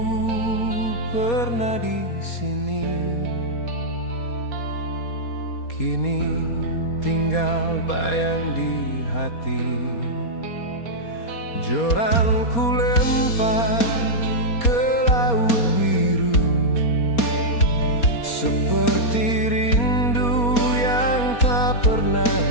pernah di sini, kini tinggal bayang di hati. Joran ku lempar ke laut biru, seperti rindu yang tak pernah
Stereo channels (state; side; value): late; right; 4.2 ms